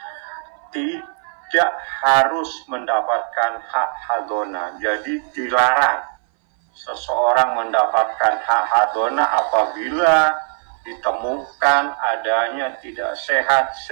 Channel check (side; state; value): left; silent; 60 dB below the other